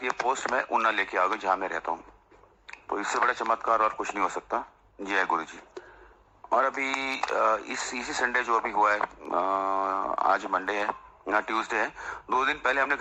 ये पोस्ट में ऊना लेके आ गई जहाँ मैं रहता हूँ। तो इससे बड़ा चमत्कार और कुछ नहीं हो सकता। जय गुरु जी। और अभी इसी संडे जो अभी हुआ है, आज मंडे है या ट्यूसडे है, 2 दिन पहले हमने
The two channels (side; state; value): both; identical; correlation 1.00